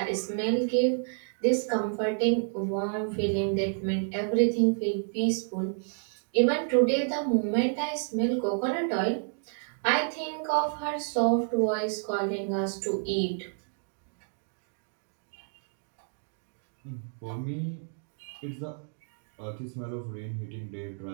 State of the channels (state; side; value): silent; left; digital silence